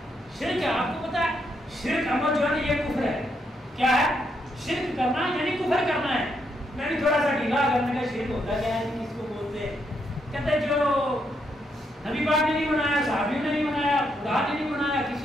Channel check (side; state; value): both; normal; correlation 0.78